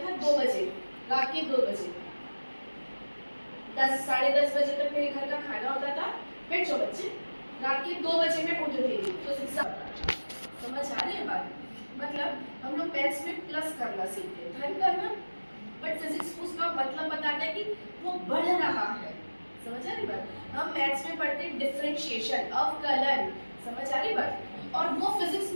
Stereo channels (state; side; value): inverted; both; correlation -1.00